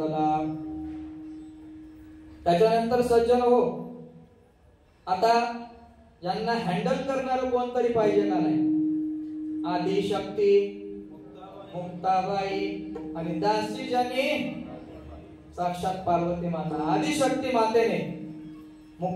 त्याच्यानंतर सज्जन हो, आता यांना हँडल करणार कोणतरी पाहिजे का नाही? आदिशक्ती मुक्ताबाई आणि दासी ज्यांनी साक्षात पार्वती माता. आदिशक्ती मातेने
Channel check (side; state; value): both; identical; correlation 1.00